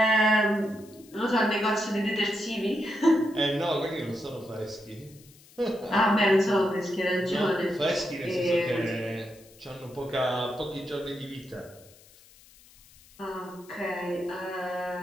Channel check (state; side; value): noise; left; hiss, 25 dB below the sound